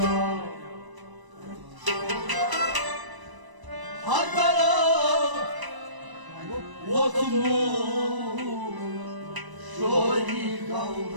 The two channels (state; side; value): late; left; 1.0 ms